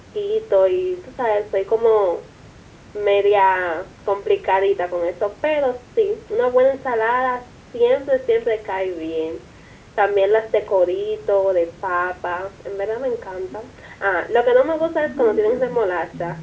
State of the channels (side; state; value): both; identical; correlation 1.00